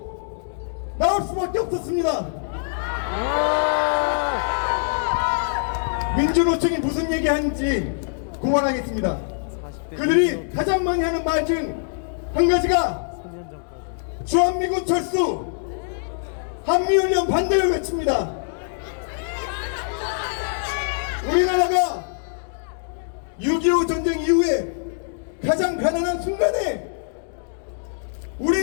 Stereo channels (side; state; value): right; silent; digital silence